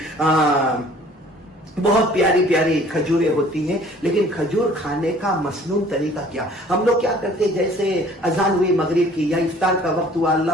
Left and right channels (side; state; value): both; normal; correlation 0.53